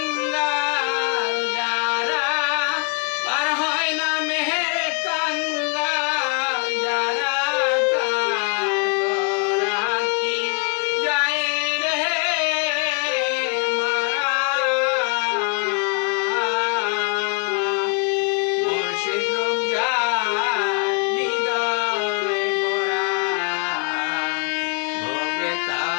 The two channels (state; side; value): quieter; right; 34.2 dB